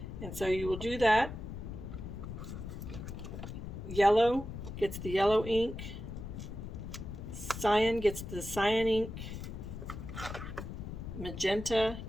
And so you will do that. Yellow gets the yellow ink. Cyan gets the cyan ink. Magenta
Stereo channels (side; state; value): left; noise; rumble, 8 dB below the sound